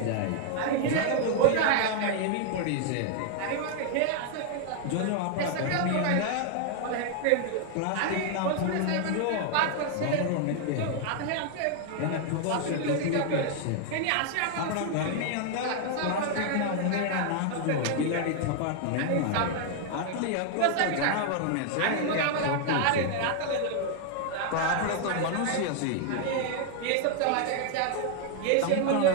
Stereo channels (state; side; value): different; both; correlation 0.00